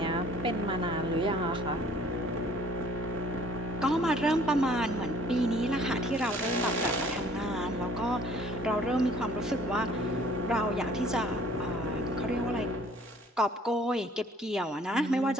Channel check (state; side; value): normal; both; correlation 0.56